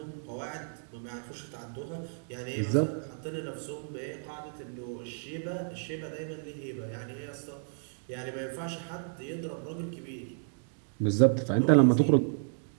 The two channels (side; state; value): left; silent; digital silence